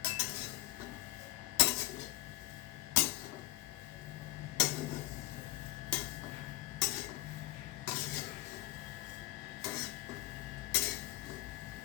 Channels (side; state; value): right; quieter; 17.9 dB